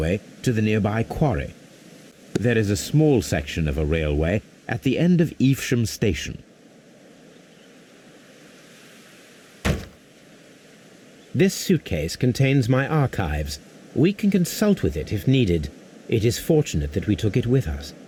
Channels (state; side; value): identical; both; correlation 1.00